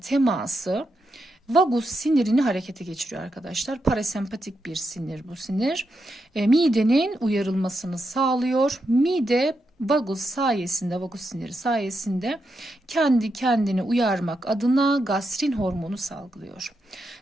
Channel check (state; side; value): normal; both; correlation 0.84